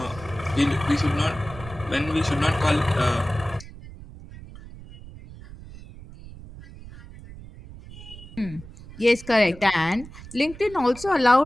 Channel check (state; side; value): noise; right; rumble, 17 dB below the sound